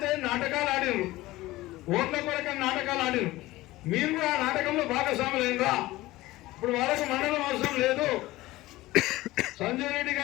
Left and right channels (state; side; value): quieter; right; 18.1 dB